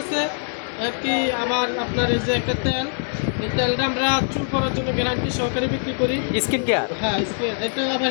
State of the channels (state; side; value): silent; right; 60 dB below the other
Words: আছে আর কি। আবার আপনার এই যে একটা তেল, এই তেলটা আমরা চুল করার জন্য গ্যারান্টি সহকারে বিক্রি করি। Skin care? হ্যাঁ, এটা আবার